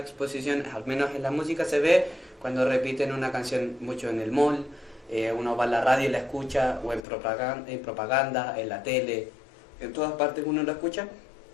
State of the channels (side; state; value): right; drops out; at 7.0 s